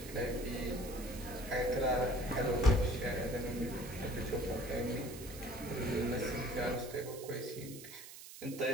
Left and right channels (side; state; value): right; noise; hiss, 14 dB below the sound